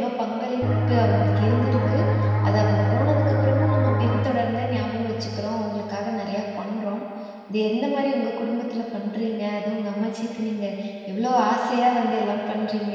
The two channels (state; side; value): identical; both; correlation 1.00